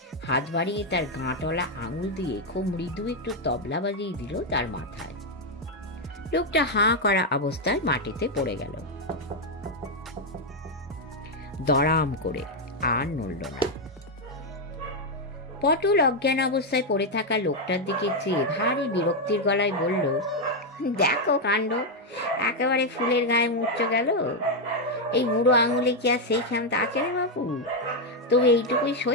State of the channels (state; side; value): normal; both; correlation 0.03